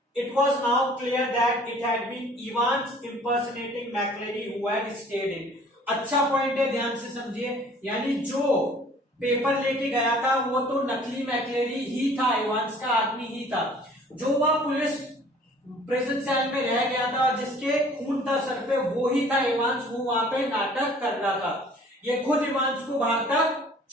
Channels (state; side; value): normal; both; correlation 0.52